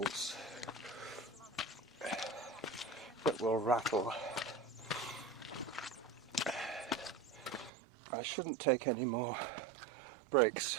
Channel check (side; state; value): left; drops out; at 7.7 s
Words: that will rattle. I shouldn't take any more breaks